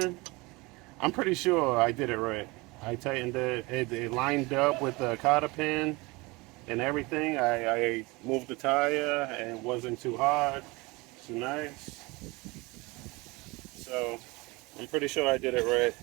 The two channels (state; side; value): quieter; left; 24.2 dB